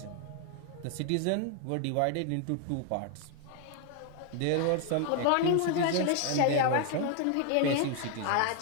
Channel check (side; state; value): both; different; correlation 0.00